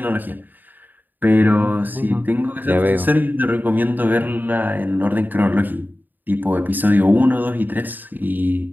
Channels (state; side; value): late; left; 0.088 ms